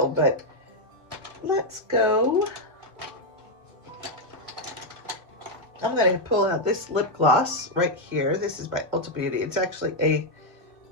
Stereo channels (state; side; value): late; left; 2.1 ms